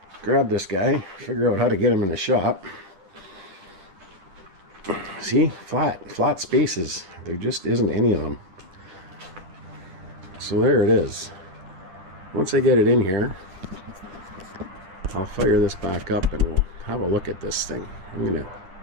grab this guy, figure out how to get him in the shop. See, flat spaces. There just isn't any of them. So there it is. Once I get it in here, I'll fire this back up and we'll have a look at this thing. I'm gonna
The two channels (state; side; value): late; left; 10 ms